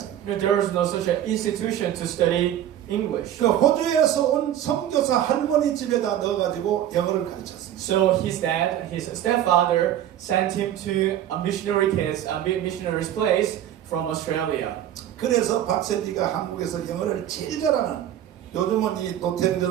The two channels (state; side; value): quieter; left; 11.3 dB